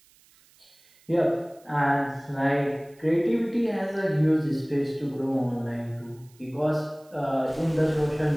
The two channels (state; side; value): noise; right; hiss, 30 dB below the sound